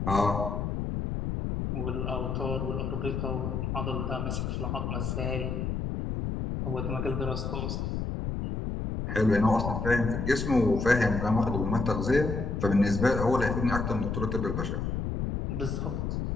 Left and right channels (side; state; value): left; noise; rumble, 2 dB below the sound